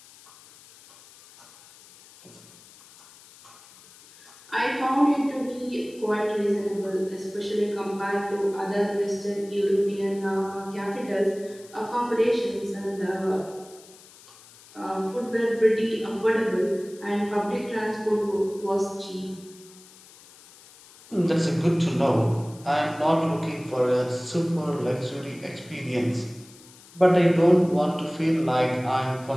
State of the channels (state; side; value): noise; left; hiss, 23 dB below the sound